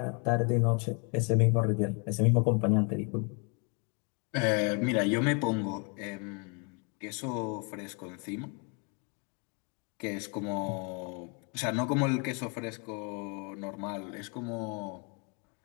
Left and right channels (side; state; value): right; quieter; 34.7 dB